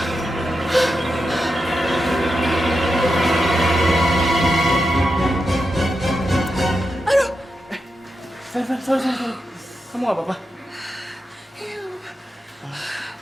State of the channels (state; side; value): normal; both; correlation 0.88